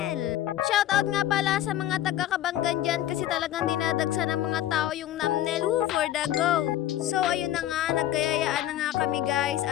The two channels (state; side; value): quieter; right; 12.8 dB